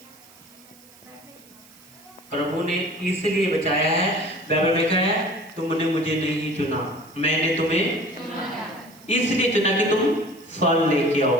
प्रभु ने इसलिए बचाया है। बाइबल में क्या है, तुमने मुझे नहीं चुना, मैंने तुम्हें इसलिए चुना कि तुम फल लेके आओ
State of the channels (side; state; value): right; noise; hiss, 25 dB below the sound